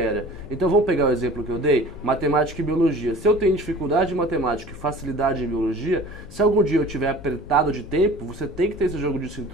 Então, vamos pegar o exemplo que eu dei, matemática e biologia. Se eu tenho dificuldade em matemática e facilidade em biologia, se algum dia eu tiver apertado de tempo, você tem que ter esse jogo de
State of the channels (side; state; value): left; noise; hum, 17 dB below the sound